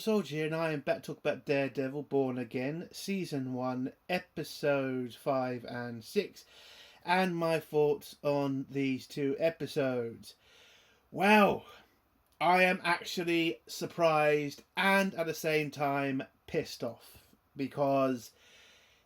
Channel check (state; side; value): identical; both; correlation 1.00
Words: here, and I am back to talk about Daredevil Born Again, Season 1, Episodes 5 and 6, and my thoughts on these two episodes. Well, I am actually surprised and at the same time pissed off, because